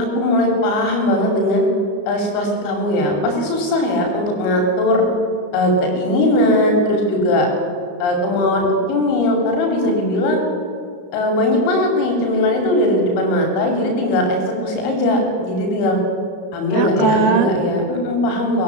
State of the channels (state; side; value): late; right; 34 ms